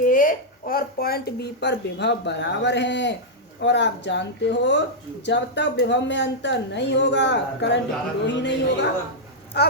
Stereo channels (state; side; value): normal; both; correlation -0.06